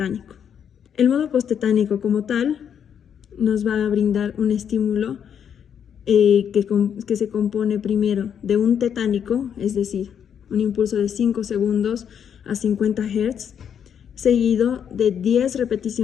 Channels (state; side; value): quieter; right; 8.3 dB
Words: El modo post-tetánico como tal nos va a brindar un estímulo que se compone primero de un tetánico, es decir, un impulso de 5 segundos a 50 Hz, seguido de 10